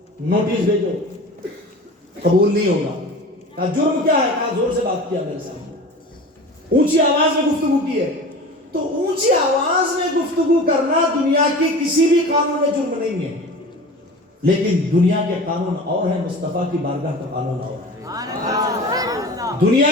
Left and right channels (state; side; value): normal; both; correlation 0.36